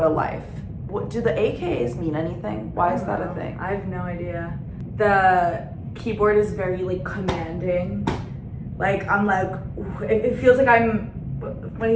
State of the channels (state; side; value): identical; both; correlation 1.00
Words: a life. What do the AKAs mean anything? Why is that a thing? I have no idea. The keyboard is very like commanding. Like I'm like, it feels like I'm when